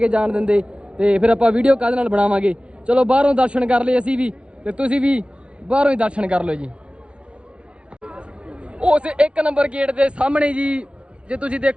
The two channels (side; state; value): left; late; 0.059 ms